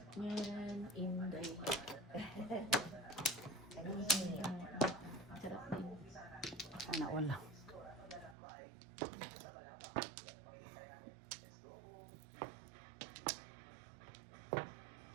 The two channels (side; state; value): left; drops out; at 8.3 s